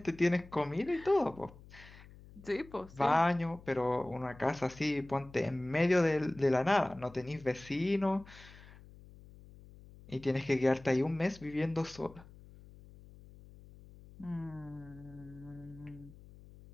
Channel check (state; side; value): noise; left; hum, 20 dB below the sound